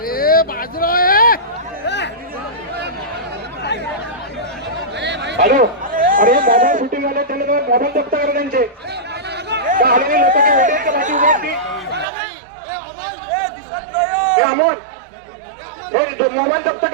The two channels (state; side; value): drops out; left; at 12.1 s